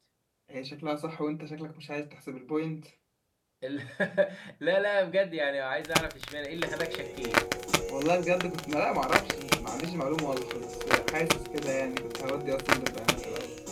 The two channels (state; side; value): identical; both; correlation 1.00